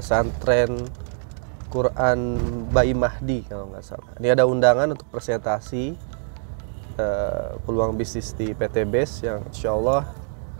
Quran Bayi Mahdi kalau nggak salah. Ini ada undangan untuk presentasi peluang bisnis di PT BES yang insya Allah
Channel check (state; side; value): silent; left; digital silence